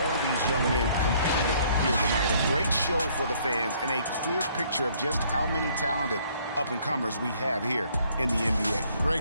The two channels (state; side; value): inverted; both; correlation -0.63